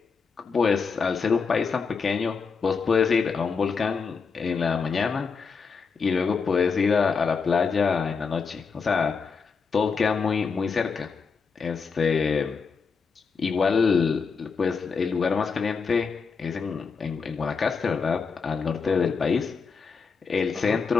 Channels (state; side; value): quieter; right; 5.3 dB